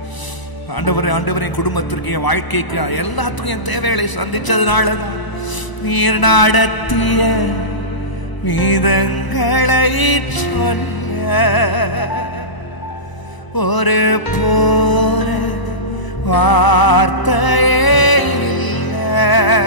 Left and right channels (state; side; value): late; right; 1.0 ms